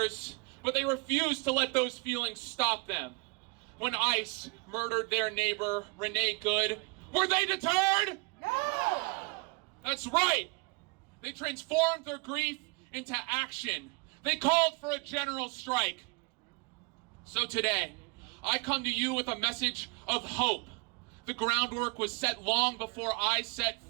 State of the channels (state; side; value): quieter; left; 31.9 dB